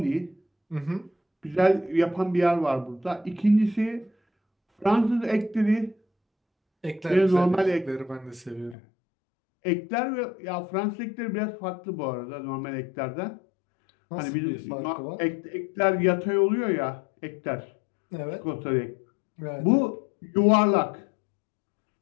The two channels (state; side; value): drops out; right; at 8.8 s